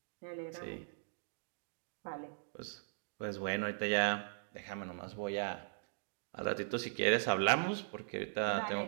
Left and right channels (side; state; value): left; silent; digital silence